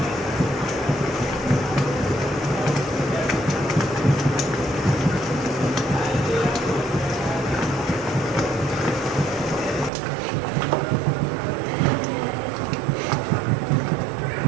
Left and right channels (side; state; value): left; drops out; at 9.9 s